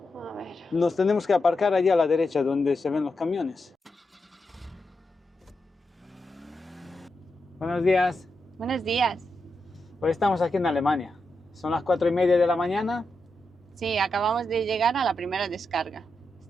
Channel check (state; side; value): normal; both; correlation 0.86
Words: A ver. Nos tenemos que aparcar allí a la derecha donde se ven los camiones. Buenos días. Buenos días. Hoy estamos aquí en Alemania. Son las 4:30 de la mañana. Sí, acabamos de llegar a la primera descarga.